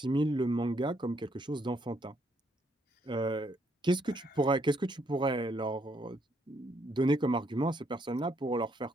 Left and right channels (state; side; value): normal; both; correlation 0.72